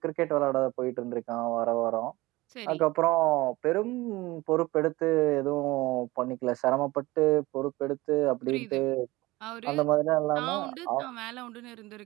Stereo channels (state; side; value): quieter; left; 20.1 dB